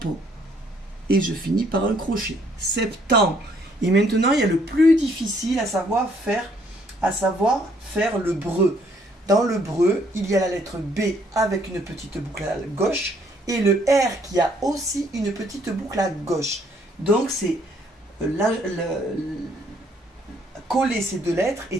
Et je finis par un crochet. Septembre. Et maintenant, il y a le plus difficile à savoir faire le breu. Dans le breu, il y a la lettre B avec une petite boucle à gauche et le R qui a aussi une petite boucle à gauche. Donc, coller ces deux lettres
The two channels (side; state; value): both; normal; correlation 0.66